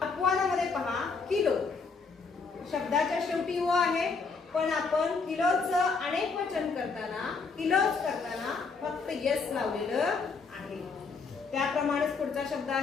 अपवादामध्ये पहा किलो शब्दाच्या शेवटी ओ आहे पण आपण किलोचं अनेक वचन करताना किलोज करताना फक्त यस लावलेलं आहे। त्याप्रमाणेच पुढचा शब्द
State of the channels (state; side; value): quieter; right; 4.7 dB